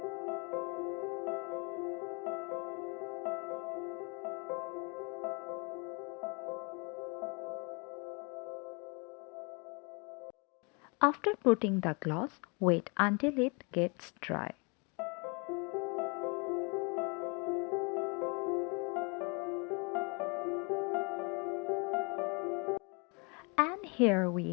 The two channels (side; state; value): right; quieter; 32.2 dB